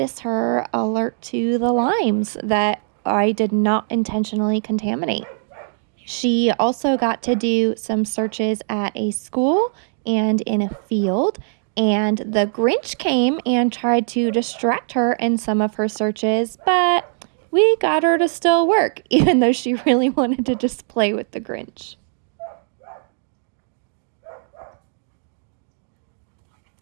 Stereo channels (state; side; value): silent; left; digital silence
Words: her alert to the limes that I did not intentionally contaminate. She also got to do some searches at a school and in a field, and the Grinch came and tried to distract her in some of her searches, but we got her to still work, even though she really wanted to just play with the Grinch.